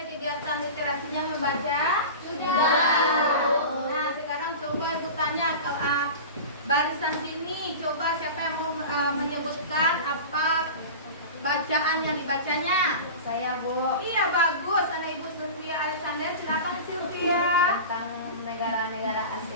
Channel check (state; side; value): inverted; both; correlation -0.32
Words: kegiatan literasinya membaca? Sudah. Nah, sekarang coba Ibu tanya barisan sini, coba siapa yang mau menyebutkan apa bacaan yang dibacanya? Saya, Bu. Iya, bagus. Anak Ibu Sylvia Alexander, silakan Sylvia. Tentang negara-negara